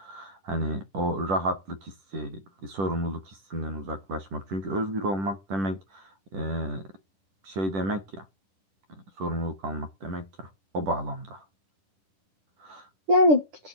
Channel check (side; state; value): left; late; 10 ms